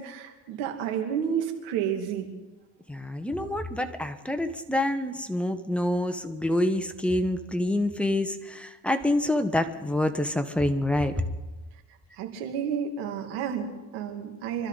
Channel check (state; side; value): normal; both; correlation 0.71